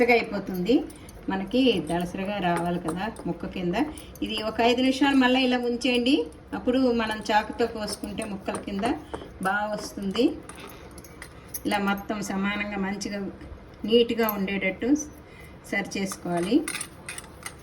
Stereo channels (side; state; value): both; identical; correlation 1.00